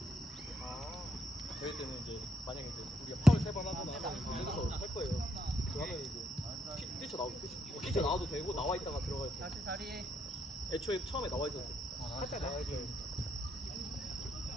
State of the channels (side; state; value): both; normal; correlation 0.76